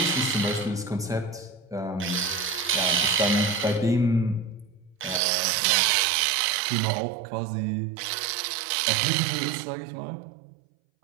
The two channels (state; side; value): drops out; left; at 5.2 s